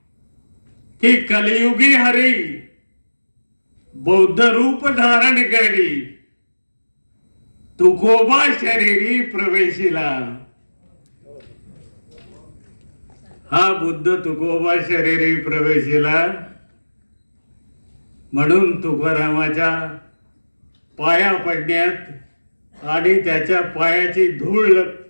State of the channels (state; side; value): inverted; both; correlation -1.00